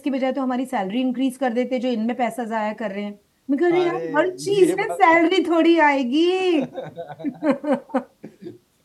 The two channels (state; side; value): identical; both; correlation 1.00